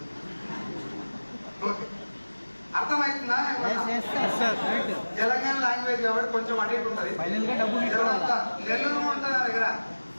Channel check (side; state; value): both; inverted; correlation -1.00